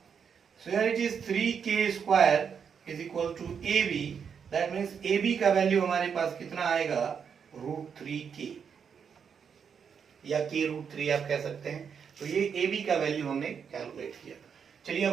So here it is 3K square is equal to AB. That means AB का value हमारे पास कितना आएगा, √3K या K√3 आप कह सकते हैं. तो ये AB का वैल्यू हमने कैलकुलेट किया. चलिए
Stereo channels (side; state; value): left; quieter; 6.9 dB